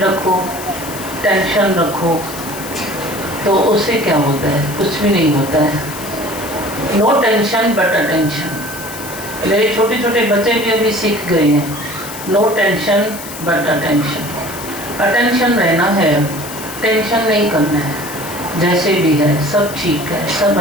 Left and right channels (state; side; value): noise; left; hiss, 12 dB below the sound